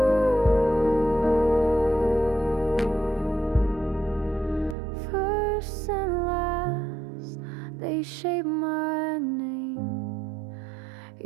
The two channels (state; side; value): drops out; left; at 4.8 s